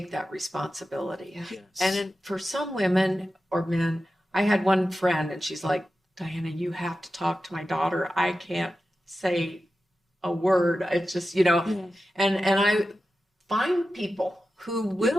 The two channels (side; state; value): both; normal; correlation 0.92